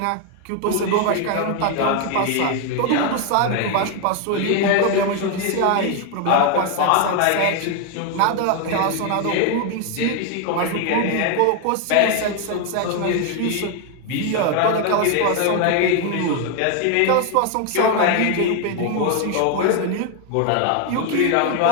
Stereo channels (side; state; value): both; different; correlation 0.01